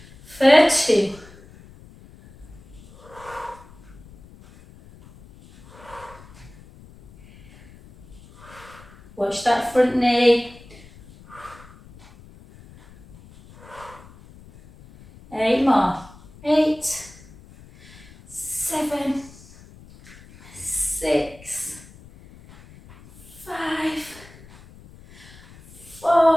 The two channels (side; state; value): left; noise; rumble, 22 dB below the sound